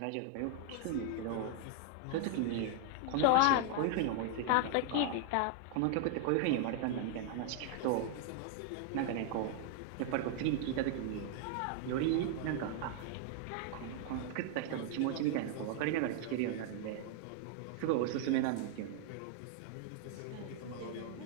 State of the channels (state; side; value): different; both; correlation 0.00